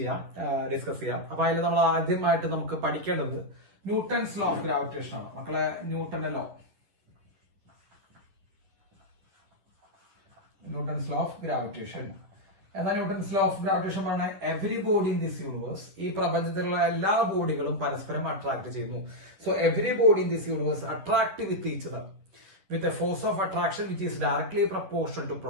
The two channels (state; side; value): late; left; 10 ms